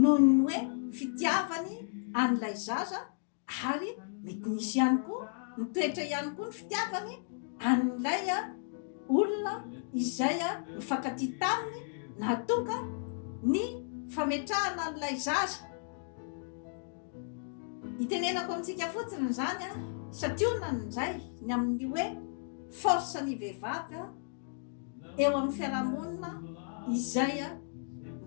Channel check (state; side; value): silent; right; digital silence